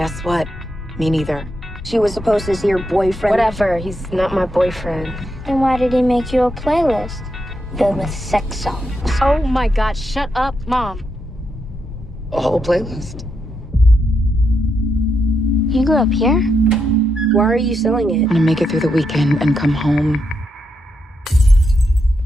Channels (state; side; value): normal; both; correlation 0.83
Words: what? Me neither. She was supposed to see your boyfriend. Whatever, he's not my boyfriend. Then why did he make you a playlist filled with sex songs? Oh my God, shut up, Mom. A whole playlist. You grew up here? Why are you selling it? I'm gonna make it through the weekend and come home.